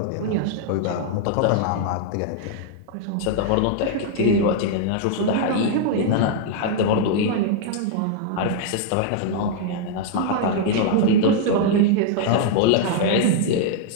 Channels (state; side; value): different; both; correlation -0.01